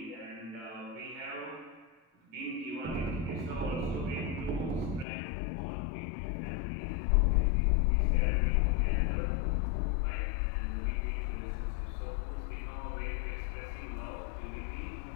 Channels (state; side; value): drops out; right; at 5.1 s